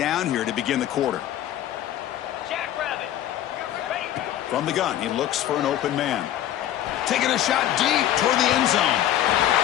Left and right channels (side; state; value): right; quieter; 12.1 dB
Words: here to begin the quarter. From the gun, he looks for an open man. Taking a shot deep toward the end zone.